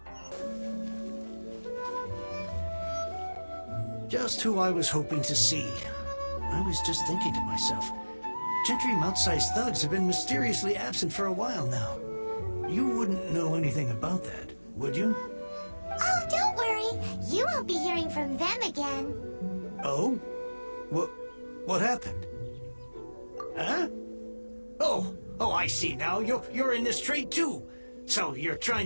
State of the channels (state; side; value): inverted; both; correlation -1.00